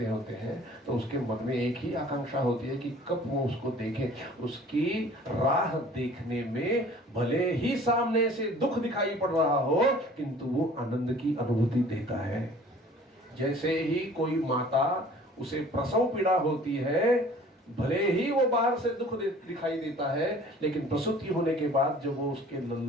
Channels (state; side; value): normal; both; correlation 0.49